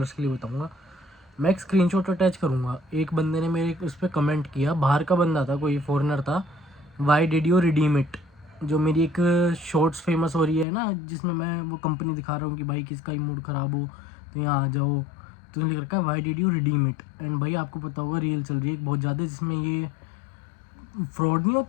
के लिए बताऊँगा, मैं एक स्क्रीनशॉट अटैच करूँगा। एक बंदे ने मेरे उस पर कमेंट किया, बाहर का बंदा था, कोई फॉरेनर था। Why did you redeem it? जो मेरी एक शॉर्ट्स फेमस हो रही है ना, जिसमें मैं वो कंपनी दिखा रहा हूँ कि भाई किसका ही मूड ख़राब हो तो यहाँ आ जाओ, तो लिख रखा है why did you redeem it. And भाई आपको पता होगा रील चल रही है बहुत ज़्यादा, जिसमें ये फ्रॉड नहीं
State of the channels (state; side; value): drops out; right; at 10.7 s